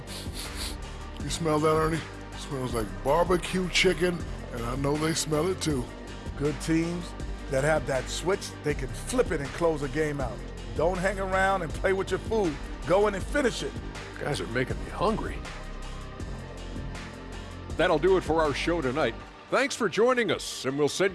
You smell that, Ernie? It smells like barbecue chicken, and I know they smell it too. Good teams that have that switch, they can flip it and close a game out. Don't hang around and play with your food. Go in and finish it. Guys are making me hungry. That'll do it for our show tonight. Thanks for joining us, and we'll send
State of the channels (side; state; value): both; identical; correlation 1.00